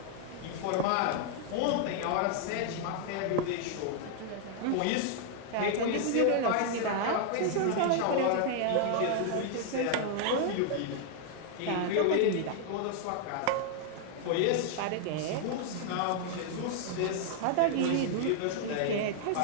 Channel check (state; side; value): different; both; correlation 0.00